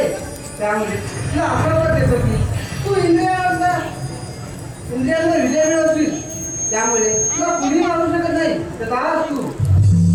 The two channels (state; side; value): identical; both; correlation 1.00